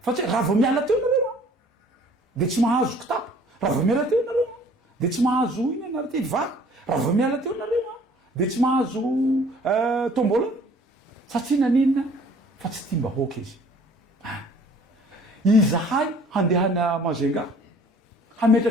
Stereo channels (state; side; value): normal; both; correlation 0.54